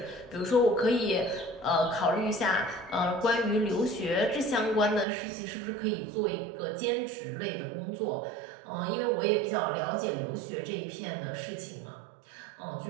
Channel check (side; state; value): left; drops out; at 5.1 s